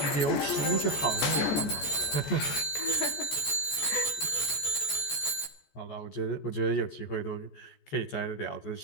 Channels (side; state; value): right; late; 14 ms